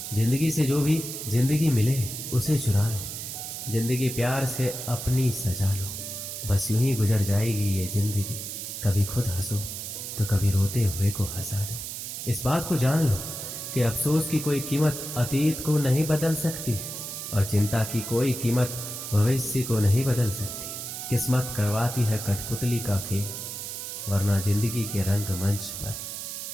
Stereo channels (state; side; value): noise; right; hiss, 7 dB below the sound